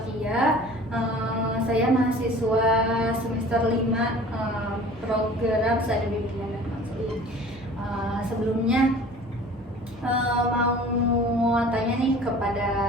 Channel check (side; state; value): both; normal; correlation 0.45